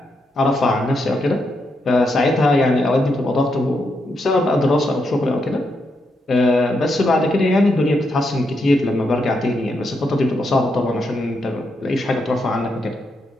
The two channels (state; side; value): normal; both; correlation 0.81